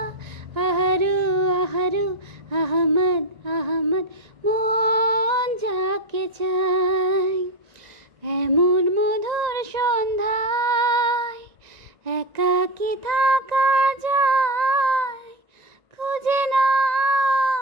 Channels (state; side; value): late; left; 1.9 ms